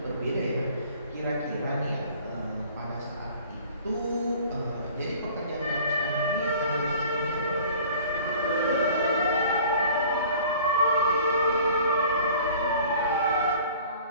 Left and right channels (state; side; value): inverted; both; correlation -0.48